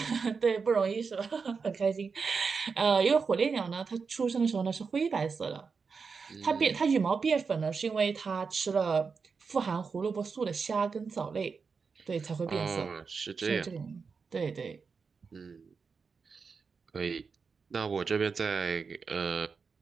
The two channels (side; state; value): left; quieter; 5.2 dB